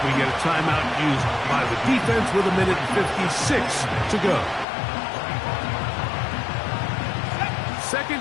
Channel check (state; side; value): drops out; right; at 4.7 s